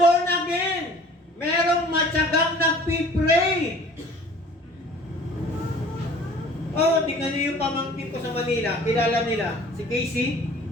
again. Merong matyagang nagpipray. Oh, tingnan niyo yung pamangkin ko sa Manila. Kilala nila. Si Casey.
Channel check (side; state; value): both; normal; correlation 0.48